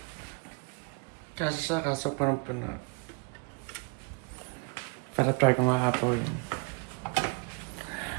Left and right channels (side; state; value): left; quieter; 35.2 dB